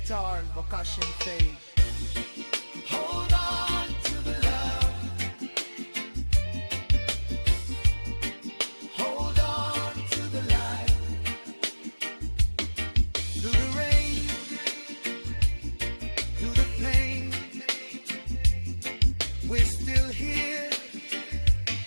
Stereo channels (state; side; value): inverted; both; correlation -1.00